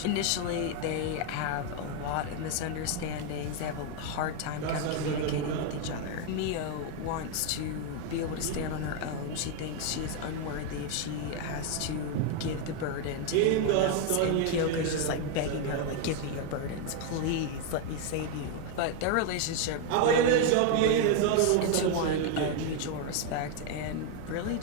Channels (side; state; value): both; different; correlation 0.01